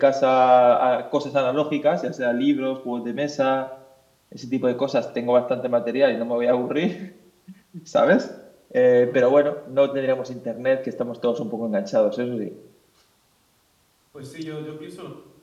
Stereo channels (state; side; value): identical; both; correlation 1.00